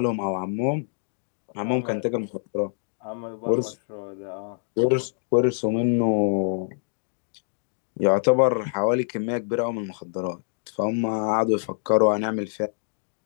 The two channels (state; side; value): silent; right; digital silence